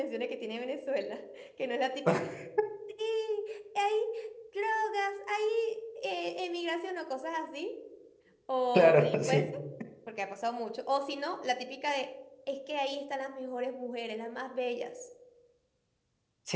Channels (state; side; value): identical; both; correlation 1.00